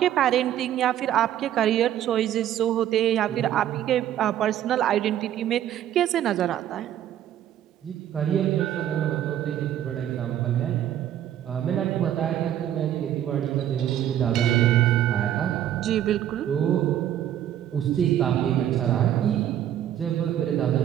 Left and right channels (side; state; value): left; quieter; 11.2 dB